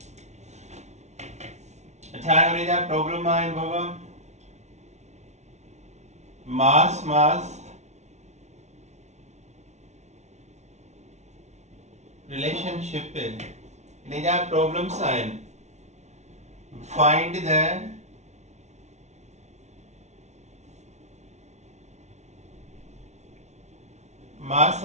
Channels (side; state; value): left; late; 0.32 ms